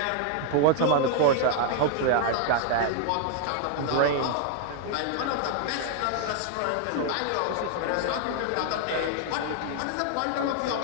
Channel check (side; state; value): both; different; correlation 0.00